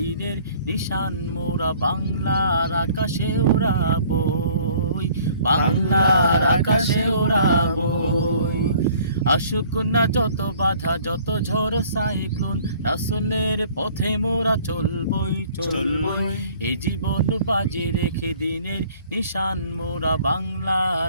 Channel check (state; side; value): inverted; both; correlation -0.55